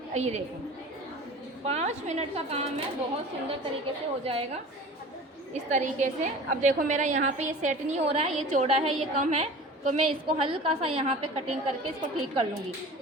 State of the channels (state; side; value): normal; both; correlation 0.39